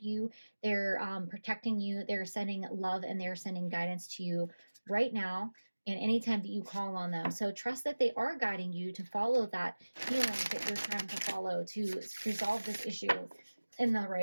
you, they're protecting you, they're sending love, and they're sending guidance to you right now and anytime that you call on them. So trust that they are guiding you to follow that healing that you're trying to follow to resolve this issue in the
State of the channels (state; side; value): inverted; both; correlation -1.00